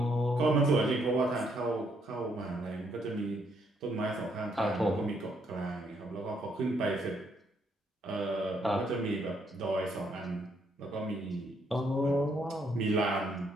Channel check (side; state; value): both; normal; correlation 0.72